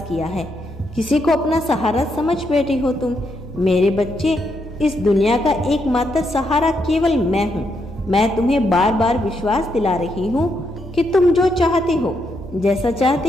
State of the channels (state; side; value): normal; both; correlation 0.79